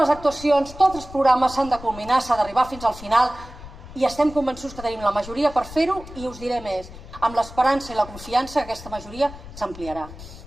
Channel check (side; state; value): left; noise; rumble, 15 dB below the sound